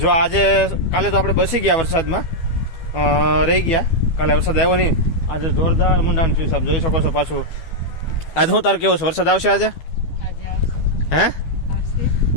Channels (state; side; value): late; right; 12 ms